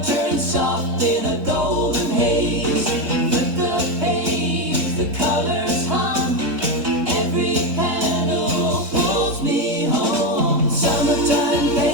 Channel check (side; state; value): left; late; 3.8 ms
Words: turns soft in a golden haze. Flip the page, the colors hum. Every panel pulls me home. Summertime